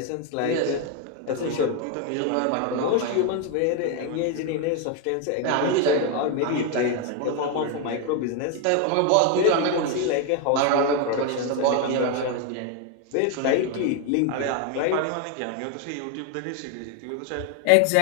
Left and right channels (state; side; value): different; both; correlation 0.01